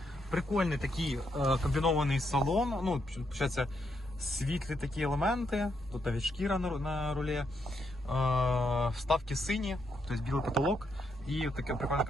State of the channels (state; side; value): normal; both; correlation 0.79